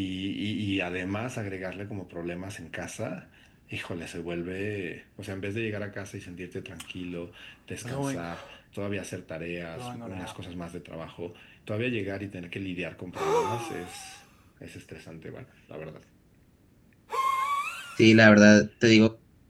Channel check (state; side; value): identical; both; correlation 1.00